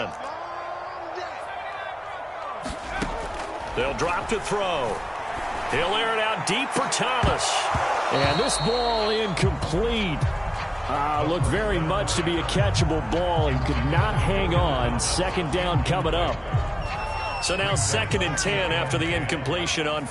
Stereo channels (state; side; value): identical; both; correlation 1.00